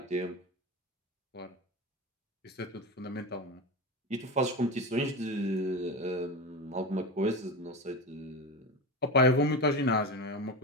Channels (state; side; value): normal; both; correlation 0.23